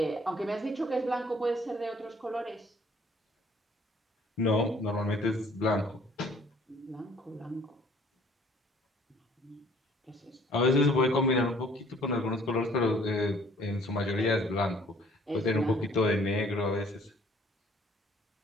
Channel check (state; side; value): normal; both; correlation 0.57